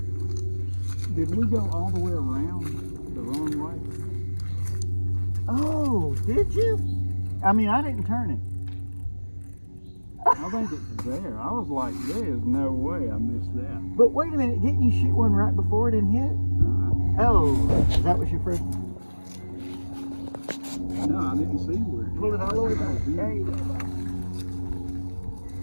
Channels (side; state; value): both; inverted; correlation -1.00